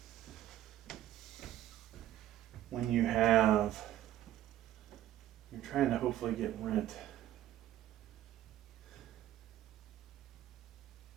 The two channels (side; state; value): left; quieter; 12.7 dB